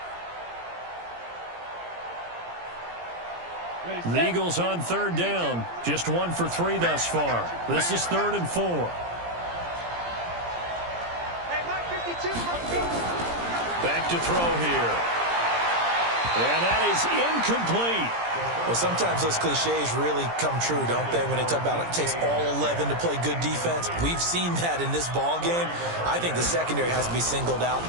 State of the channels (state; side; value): late; left; 17 ms